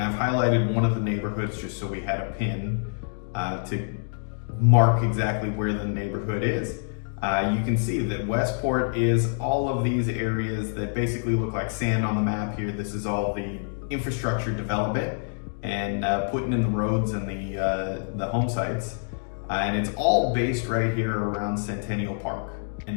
I've highlighted one of the neighborhoods just so we had a pin to mark exactly where the neighborhood is. You can see that Westport is all of these areas that basically look like sand on the map here. This is all the infrastructure development and putting in the roads and the home sites. And it's all based right here around Centennial Park.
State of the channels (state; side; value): silent; right; digital silence